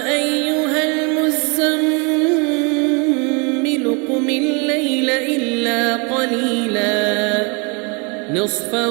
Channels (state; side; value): quieter; left; 32.7 dB